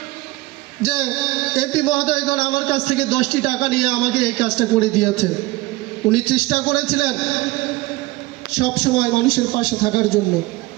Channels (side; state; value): left; quieter; 20.3 dB